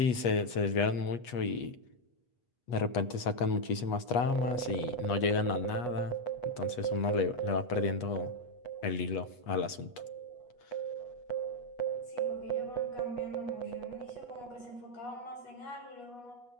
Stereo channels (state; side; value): late; right; 8.3 ms